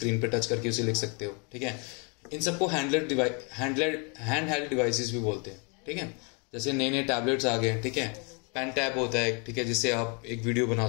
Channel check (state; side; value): quieter; right; 34.7 dB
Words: पे टच करके उसे लिख सकते हो, ठीक है। इन सबको हैंड हेल्ड डिवाइसेस भी बोलते हैं, ठीक है। जैसे नए नए टैबलेट्स आ गए हैं, ठीक है, पेन टैब होता है, ठीक है, जिससे आप एक वीडियो बना